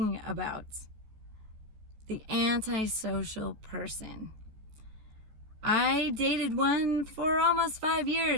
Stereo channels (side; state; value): left; late; 14 ms